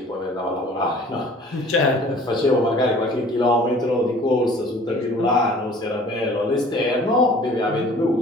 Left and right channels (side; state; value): both; normal; correlation 0.49